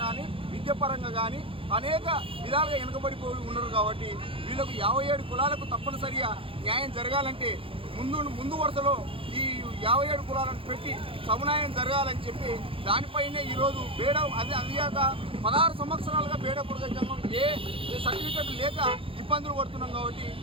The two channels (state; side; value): late; left; 0.26 ms